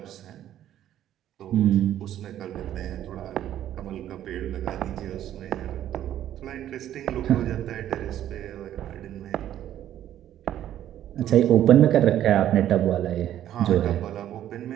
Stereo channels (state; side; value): quieter; left; 11.7 dB